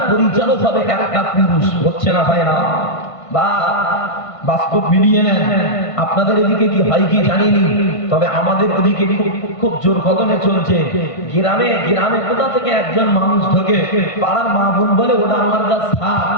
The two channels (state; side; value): late; right; 1.5 ms